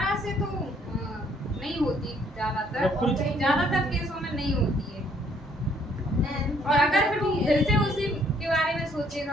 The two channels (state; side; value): normal; both; correlation 0.65